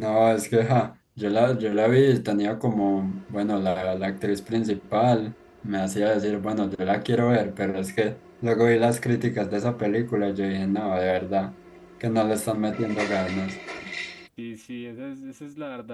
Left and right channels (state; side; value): identical; both; correlation 1.00